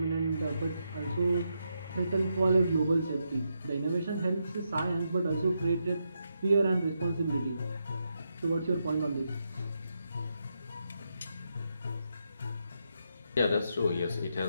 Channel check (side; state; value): both; inverted; correlation -0.82